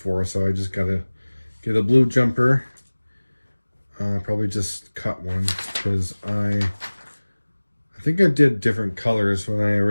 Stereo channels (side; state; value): both; inverted; correlation -1.00